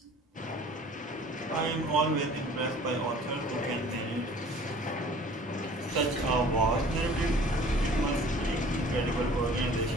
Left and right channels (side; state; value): both; normal; correlation 0.49